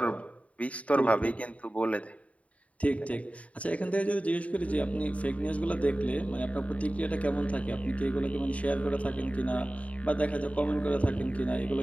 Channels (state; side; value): late; right; 0.067 ms